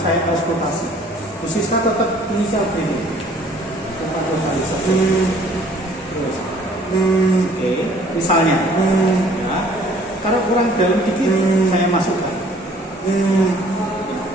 saya konsultasi. Khususnya tetap inisial begini. Terus, oke, misalnya, ya, kalau kurang dalam dikit, saya masukkan.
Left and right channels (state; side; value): normal; both; correlation 0.56